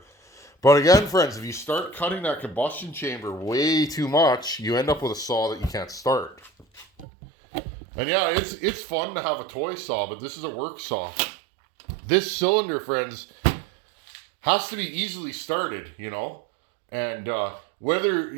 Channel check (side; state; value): left; drops out; at 7.1 s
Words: But again, friends, if you start cutting that combustion chamber way too much, you end up with a saw that you can't start. And yeah, it's fun to have a toy saw, but this is a work saw. This cylinder, friends, has to be easily started, you know? And whether